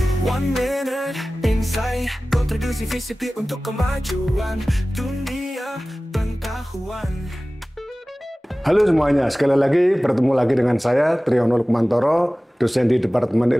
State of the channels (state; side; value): normal; both; correlation 0.97